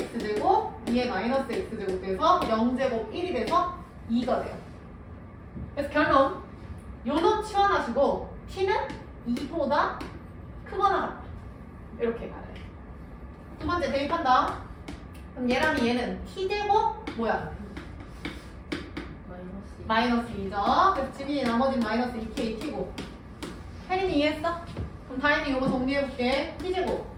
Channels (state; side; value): identical; both; correlation 1.00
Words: x제곱, 2의 마이너스 x제곱 돼서 0제곱 1이 돼서 2가 돼요. 그래서 결론 요놈 치환하시고 t는 2보다 크거나 같다. 이렇게 가야 돼. 두 번째 대입한다. 그럼 얘랑 얘는 t제곱 뭐야? 마이너스 2죠. 그래서 지민이 나머지는 마이너스 2k t고. 혜린이 이해했어? 그럼 다행히 이거 정리해볼게. t제곱